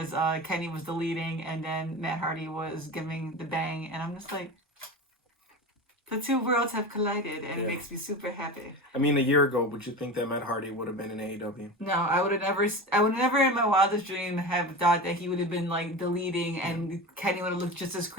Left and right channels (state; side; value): normal; both; correlation 0.28